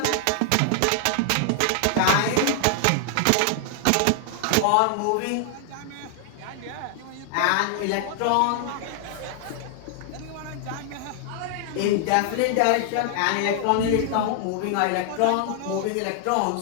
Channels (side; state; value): both; different; correlation 0.00